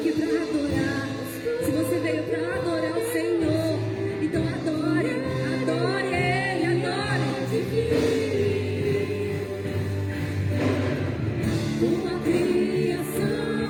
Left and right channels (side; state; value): both; identical; correlation 1.00